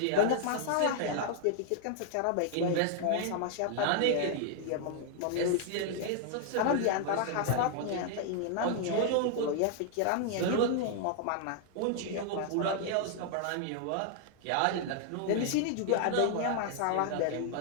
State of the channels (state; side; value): different; both; correlation 0.00